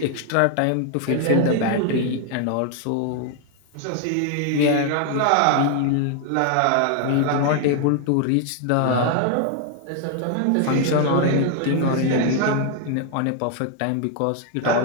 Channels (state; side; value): different; both; correlation 0.00